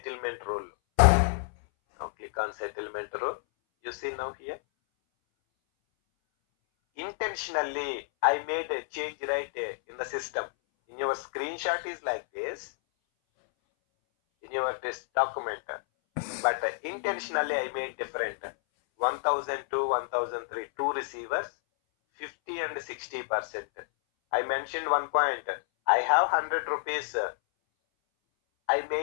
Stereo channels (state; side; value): silent; right; 58 dB below the other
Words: rule. Now click on settlement rule. You see now here. Intentionally, I made a change right in the system. In your screenshot is like this, in your this document, but intentionally I made different. 1002, 1003, two receivers, 50 and 60%. I mentioned one point. I have 100 rupees. I